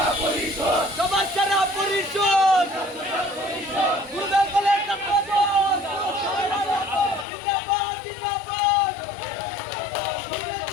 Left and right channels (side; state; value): right; drops out; at 7.2 s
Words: পরিষদ, সবার সেরা পরিষদ। গুরুদেব কলেজ ছাত্রদল জিন্দাবাদ, জিন্দাবাদ। গুরুদেব